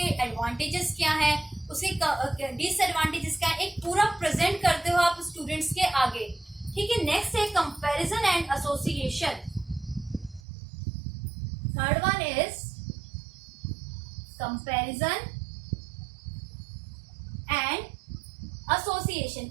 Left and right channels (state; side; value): drops out; left; at 10.4 s